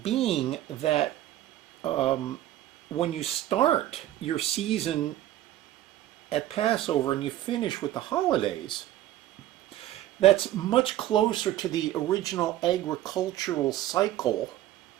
being that when you start your season at Passover and you finish with the holidays, that's much closer to the original agricultural cycle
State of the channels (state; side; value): quieter; left; 13.7 dB